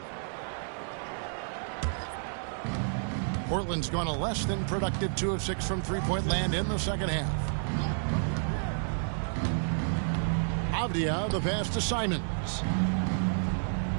Portland's gone a less than productive 2 of 6 from three-point land in the second half. Avdia, the pass to Simons.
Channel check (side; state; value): left; silent; 58 dB below the other